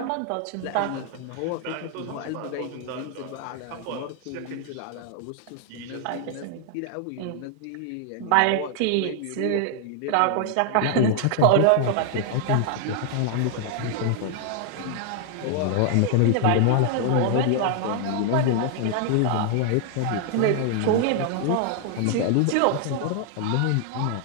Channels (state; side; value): different; both; correlation 0.00